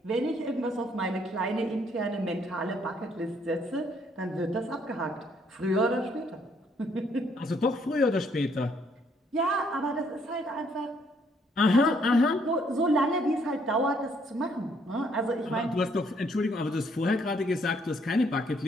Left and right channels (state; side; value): normal; both; correlation 0.68